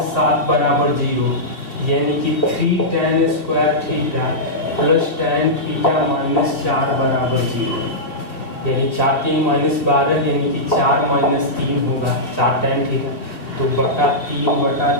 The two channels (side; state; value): right; late; 3.3 ms